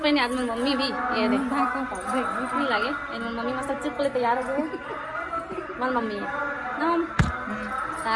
आज मेरी मम्मी भी, ये देख नहीं लगे मम्मी मस्त चुप ले तैयार हो गए। मन मम्मी है ना मम्मी,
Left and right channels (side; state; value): both; identical; correlation 1.00